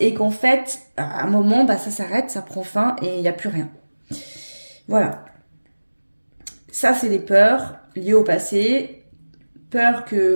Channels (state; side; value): inverted; both; correlation -1.00